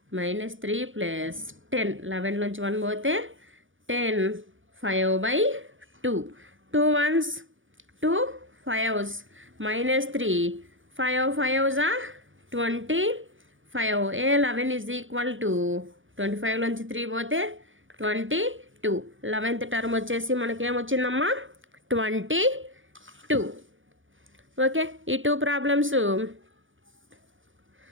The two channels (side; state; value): left; late; 0.57 ms